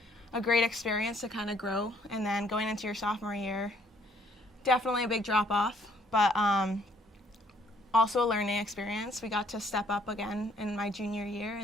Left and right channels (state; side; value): normal; both; correlation 0.64